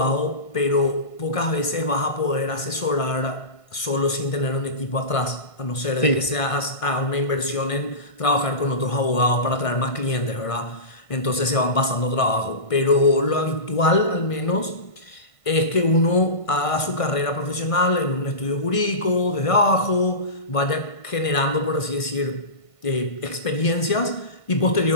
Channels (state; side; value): late; right; 1.5 ms